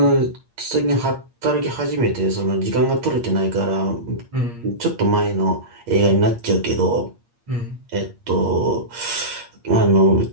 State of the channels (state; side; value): late; left; 8.6 ms